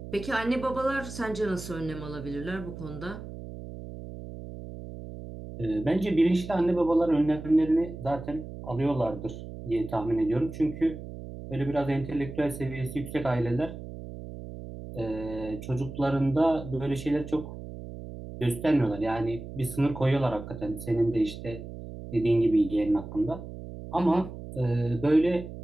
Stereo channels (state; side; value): noise; right; hum, 11 dB below the sound